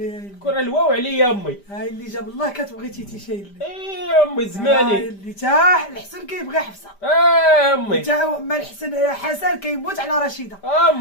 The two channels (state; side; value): late; right; 5.0 ms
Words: كون الواو عليا امي هاي اللي جاب الله كتبغي تيتي شي اللي امي زماني هاي اللي تا الحسن كيبغي حفصه امي تا ما الحسن حسن كيموت على رشيده